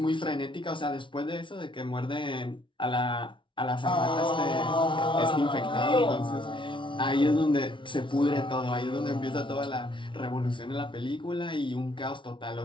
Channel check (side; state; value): right; late; 0.24 ms